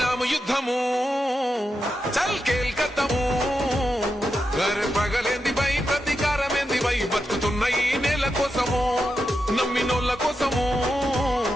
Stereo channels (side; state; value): both; normal; correlation 0.87